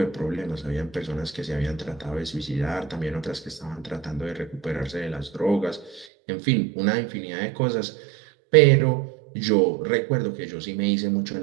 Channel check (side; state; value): left; drops out; at 6.1 s